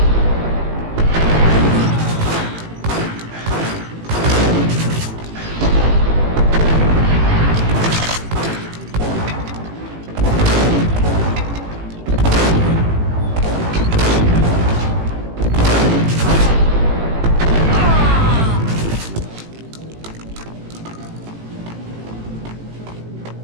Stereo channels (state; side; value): late; left; 18 ms